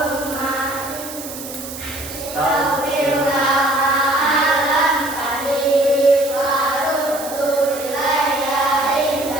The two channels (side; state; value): right; noise; hiss, 11 dB below the sound